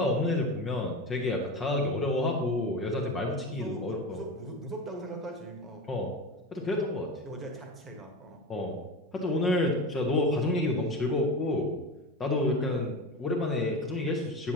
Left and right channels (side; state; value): both; normal; correlation 0.26